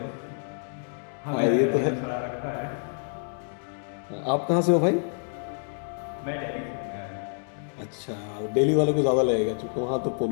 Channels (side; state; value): right; silent; digital silence